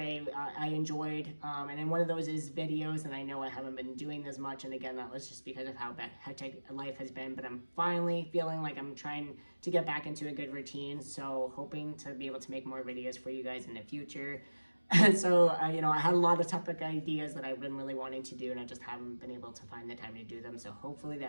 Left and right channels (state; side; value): inverted; both; correlation -1.00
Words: enjoyed. And then one of those is videos, and I know I haven't been doing as much. And again, that was just because of how hectic life has been, but I'm finally feeling like I'm trying to get back into a good routine. So hoping to be able to make more videos for you guys in the future. And so, you know, I had a lot of topic ideas that I've been really wanting to do, and I just haven't been able to find the time to do them. So hopefully